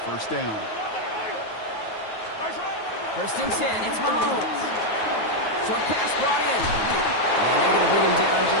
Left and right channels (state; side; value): late; right; 9.4 ms